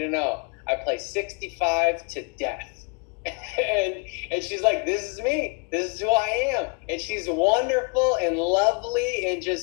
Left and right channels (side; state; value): right; quieter; 32.8 dB